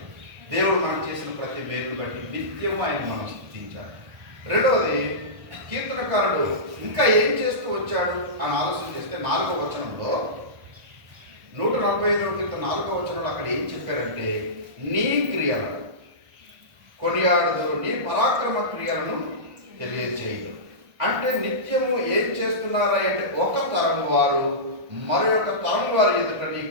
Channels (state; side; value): late; left; 1.4 ms